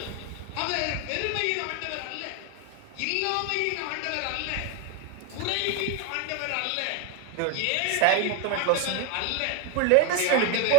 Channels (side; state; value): both; different; correlation 0.02